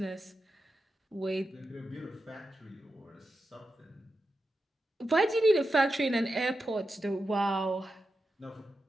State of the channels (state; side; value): normal; both; correlation 0.89